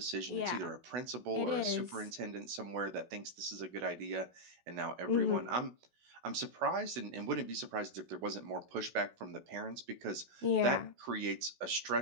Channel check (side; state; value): left; late; 16 ms